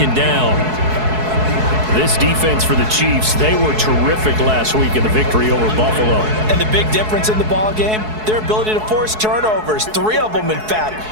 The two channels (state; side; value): late; left; 4.7 ms